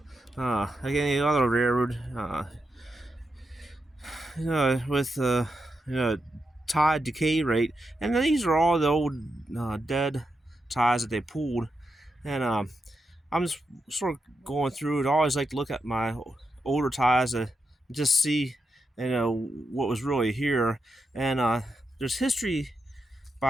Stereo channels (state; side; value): normal; both; correlation 0.86